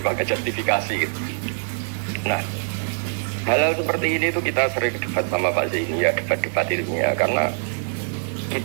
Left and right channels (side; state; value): left; silent; digital silence